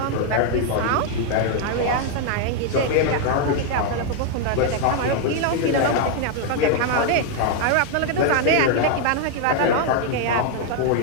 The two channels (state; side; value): different; both; correlation 0.00